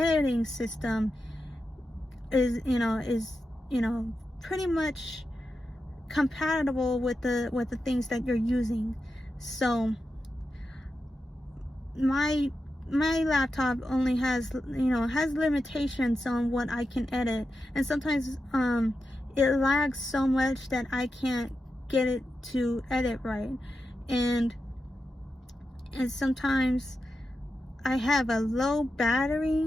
system is pretty much compatible with the things that you're using. So my laptop only has limitations on what I can edit, and sometimes it lags so much that I can't get it to edit right, and sometimes I have a low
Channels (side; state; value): both; normal; correlation 0.89